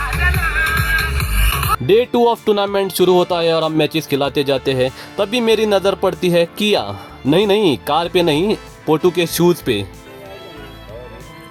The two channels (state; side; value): identical; both; correlation 1.00